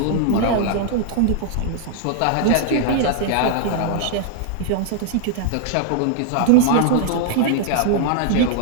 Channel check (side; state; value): both; different; correlation 0.00